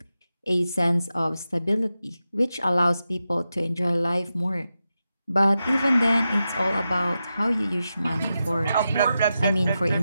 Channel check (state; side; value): inverted; both; correlation -0.90